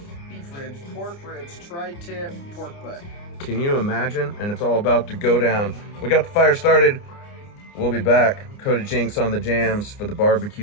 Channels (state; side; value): late; right; 29 ms